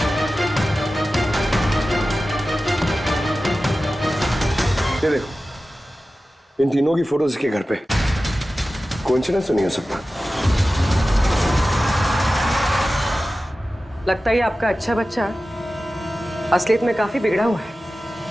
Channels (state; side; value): normal; both; correlation 0.95